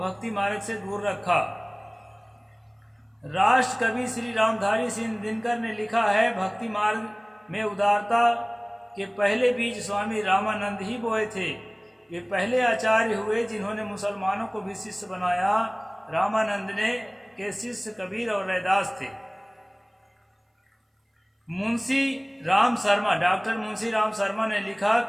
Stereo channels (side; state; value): both; identical; correlation 1.00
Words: मार्ग से दूर रखा। राष्ट्र कवि श्री रामधारी सिंह दिनकर ने लिखा है, भक्ति मार्ग में उदारता के पहले बीज स्वामी रामानंद ही बोए थे। वे पहले आचार्य हुए जिन्होंने मुसलमानों को भी शिष्य बनाया। रामानंद ने के शिष्य कबीर और रैदास थे। मुंशी राम शर्मा, डॉक्टर मुंशी राम शर्मा ने लिखा